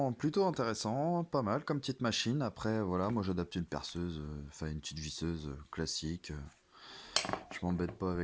plutôt intéressant, pas mal comme petite machine. Après voilà, moi j'adapte une perceuse, enfin une petite visseuse classique. Je m'embête pas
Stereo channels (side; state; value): both; identical; correlation 1.00